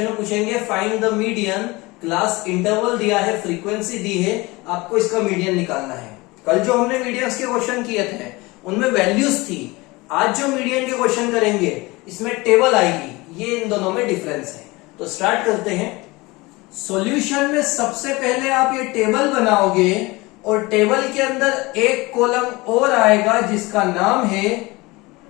में पूछेंगे find the median, class interval दिया है, फ्रीक्वेंसी दी है, आपको इसका मीडियन निकालना है। कल जो हमने मीडियंस के क्वेश्चन किए थे उनमें वैल्यूज थी, आज जो मीडियन के क्वेश्चन करेंगे इसमें टेबल आएगी। ये इन दोनों में डिफरेंस है। तो स्टार्ट करते हैं। सॉल्यूशन में सबसे पहले आप ये टेबल बनाओगे और टेबल के अंदर एक कॉलम और आएगा जिसका नाम है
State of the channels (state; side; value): quieter; right; 22.9 dB